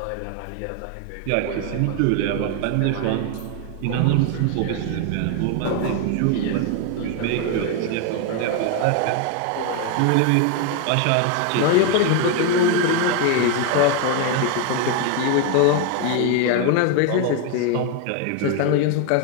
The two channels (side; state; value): both; different; correlation 0.01